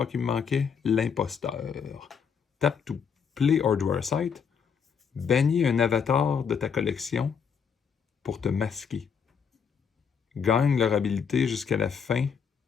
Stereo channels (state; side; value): quieter; right; 6.6 dB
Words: qui me manquait, l'imposteur. Tap to play or draw a site. Bannis un avatar de ta collection pour te masquer. Gagne leur habilité jusqu'à la fin.